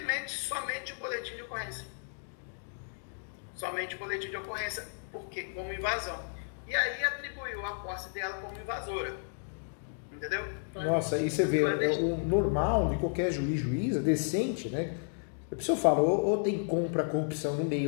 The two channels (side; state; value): right; silent; digital silence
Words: o boletim de ocorrência. Somente o boletim de ocorrência, porque como invasão. E aí atribuiu a posse dela como invasora. Entendeu? Nossa, e você vê, o normal de qualquer juíza decente, né? A pessoa fala, ou tem compra, corrupção no